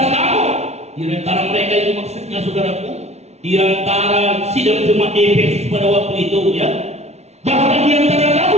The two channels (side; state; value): left; late; 0.31 ms